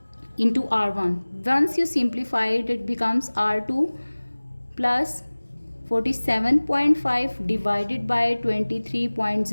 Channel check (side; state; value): both; inverted; correlation -1.00